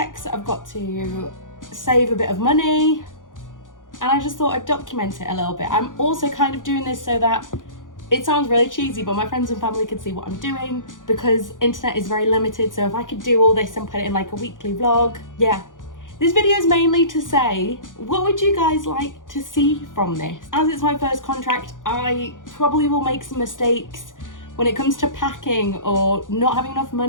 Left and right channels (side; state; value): right; late; 0.88 ms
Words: I've got to save a bit of money, and I just thought I'd document it a little bit. I'm also kind of doing this so that it sounds really cheesy, but my friends and family could see what I'm doing, because internet is very limited. So if I could do all this and put it in like a weekly vlog, yeah. This video is mainly to say, what would you guys like to see from this? As it's my first contract, I probably will make some mistakes when it comes to packing or not having enough